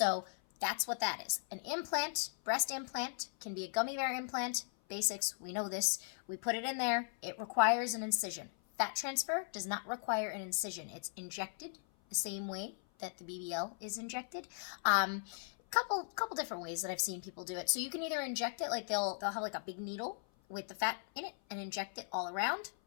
that's what that is. An implant, breast implant, can be a gummy bear implant. Basics, we know this. We put it in there. It requires an incision. Fat transfer does not require an incision. It's injected the same way that the BBL is injected. Couple different ways that I've seen people do it. So you can either inject it, like they'll have like a big needle with the fat in it and inject it all around,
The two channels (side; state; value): right; silent; 53 dB below the other